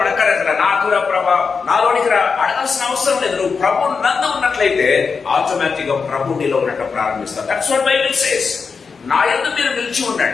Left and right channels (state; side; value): quieter; right; 5.3 dB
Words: అడగాలి, నాకు రా ప్రభా, నాలోనికి రా, అడగాల్సిన అవసరం లేదు. నువ్వు ప్రభు నందు ఉన్నట్లయితే ఆటోమేటిక్ గా ప్రభు నీలో ఉన్నట్టు ప్రారంభిస్తావు. That's what Bible says. నా యందు మీరు నిలిచి